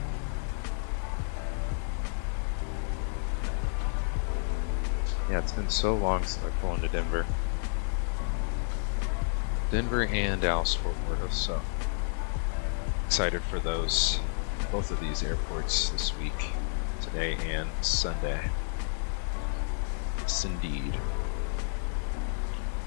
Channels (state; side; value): silent; right; digital silence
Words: Yeah, it's been so long since I've flown to Denver. Denver and Dallas Fort Worth, so excited for those, both of these airports this week, today and Sunday. Yes, indeed.